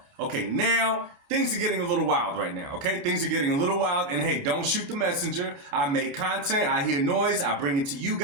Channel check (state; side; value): late; left; 29 ms